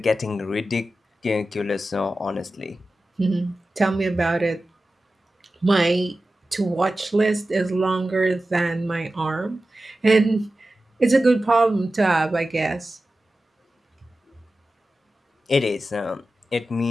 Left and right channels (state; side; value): normal; both; correlation 0.94